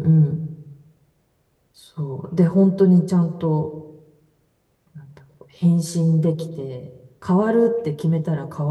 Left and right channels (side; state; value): both; identical; correlation 1.00